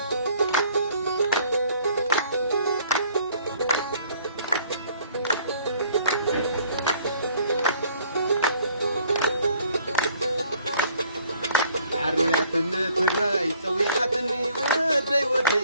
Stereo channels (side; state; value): both; inverted; correlation -0.59